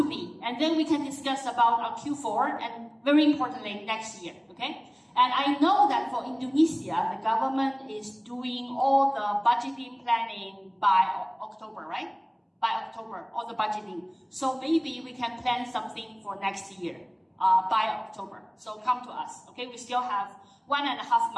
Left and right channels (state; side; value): identical; both; correlation 1.00